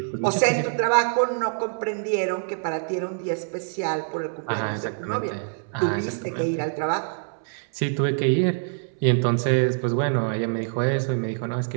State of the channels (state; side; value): silent; left; 62 dB below the other